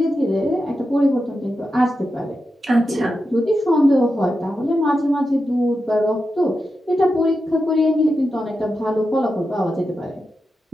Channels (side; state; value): both; normal; correlation 0.89